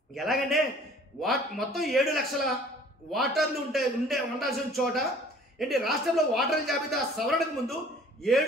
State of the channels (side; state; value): both; normal; correlation 0.52